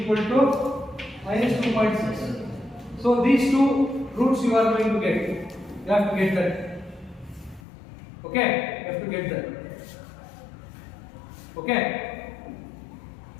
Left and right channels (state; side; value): drops out; right; at 7.6 s